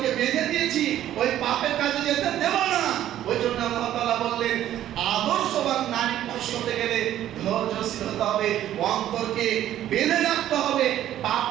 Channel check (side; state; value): left; quieter; 12.2 dB